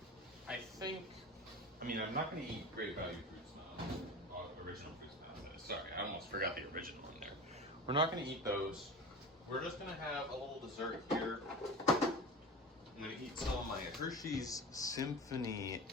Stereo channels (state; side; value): normal; both; correlation 0.31